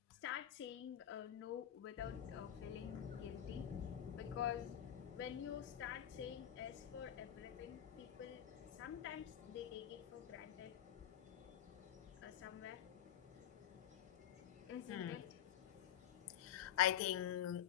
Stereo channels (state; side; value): quieter; right; 10.4 dB